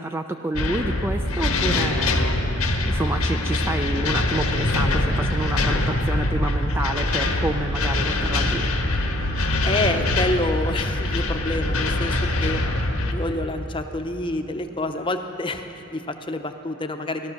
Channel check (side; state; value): both; normal; correlation 0.62